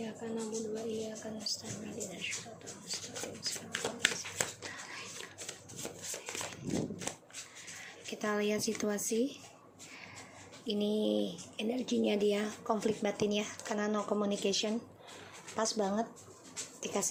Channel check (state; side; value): identical; both; correlation 1.00